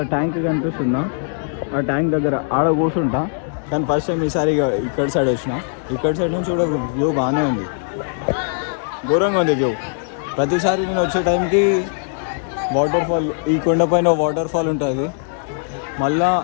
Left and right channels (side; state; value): right; silent; 66 dB below the other